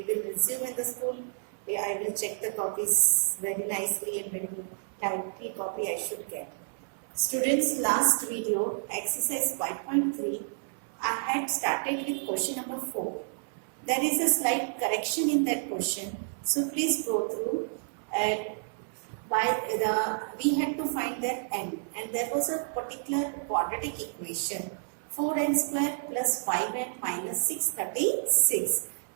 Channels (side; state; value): left; silent; 58 dB below the other